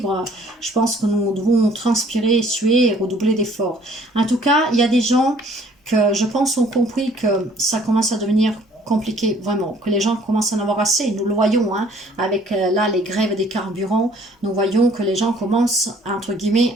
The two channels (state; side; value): normal; both; correlation 0.57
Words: je pense que nous devons transpirer, suer et redoubler d'efforts. En tout cas, il y a des gens que je pense ont compris que ça commence à devenir compliqué, vraiment, que les gens commencent à en avoir assez. Nous le voyons, hein, avec là les grèves des carburants, nous voyons que les gens commencent, entre